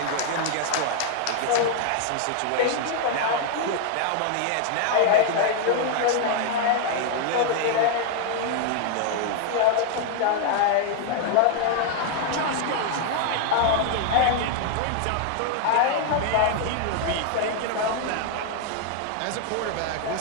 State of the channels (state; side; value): different; both; correlation 0.00